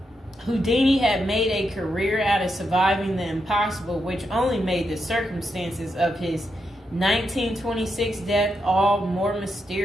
Houdini had made a career out of surviving the impossible, which only made the circumstances of his 1926 death all more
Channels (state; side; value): normal; both; correlation 0.83